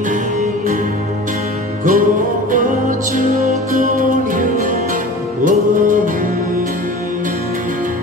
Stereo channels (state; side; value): normal; both; correlation 0.38